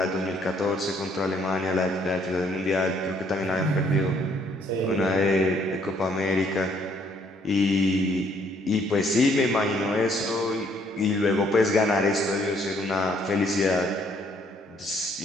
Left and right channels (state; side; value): normal; both; correlation 0.66